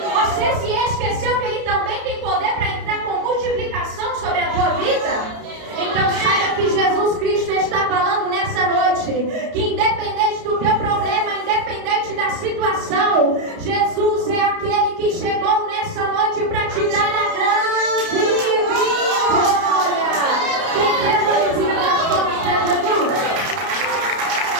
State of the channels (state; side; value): late; left; 31 ms